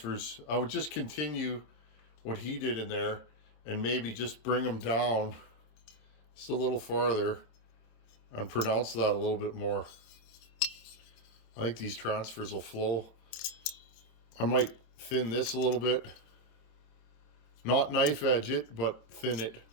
I would just continue what he did in there and maybe just bring them down just a little farther and pronounce that a little bit more. I think these transfers will flow. I might thin this a little bit. Not knife edge it, but thin it.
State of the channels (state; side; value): late; right; 26 ms